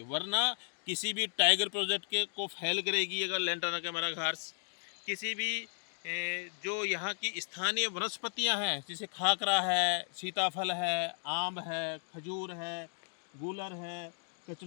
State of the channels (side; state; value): right; silent; digital silence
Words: वरना किसी भी टाइगर प्रोजेक्ट के को फेल करेगी अगर लेंटाना कैमारा घास। किसी भी जो यहाँ की स्थानीय वनस्पतियाँ हैं जैसे खाकरा है, सीताफल है, आम है, खजूर है, गूलर है,